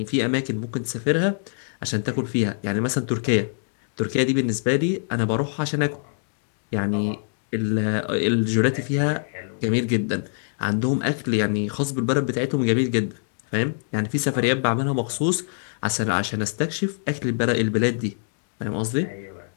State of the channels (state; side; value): silent; right; digital silence